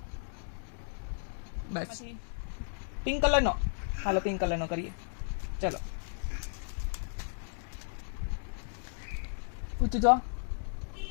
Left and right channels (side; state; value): right; silent; digital silence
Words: બસ પિંક કલર નો. હાલો પિંક કલર નો કરીએ. ચલો ઊંચું જો.